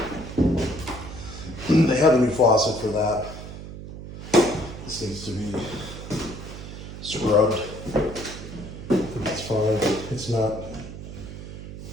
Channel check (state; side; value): noise; right; hum, 11 dB below the sound